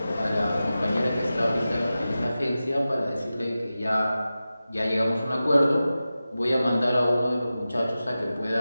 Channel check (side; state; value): both; inverted; correlation -0.94